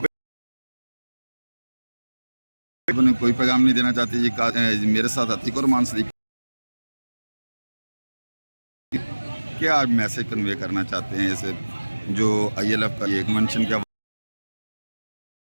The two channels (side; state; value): both; inverted; correlation -1.00